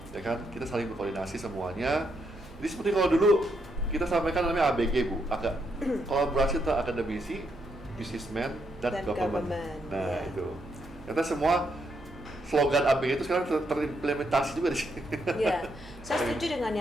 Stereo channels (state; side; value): noise; right; hum, 19 dB below the sound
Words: kan, kita saling berkoordinasi semuanya. Jadi seperti kalau dulu kita sampaikan namanya ABG Bu, agak kolaborasi antara akademisi, businessman, dan government. Nah itu, kita semua slogan ABG itu sekarang terimplementasi juga di sini. Iya, saya setuju dengan